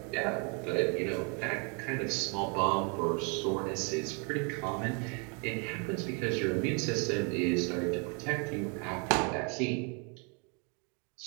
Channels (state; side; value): quieter; left; 35.2 dB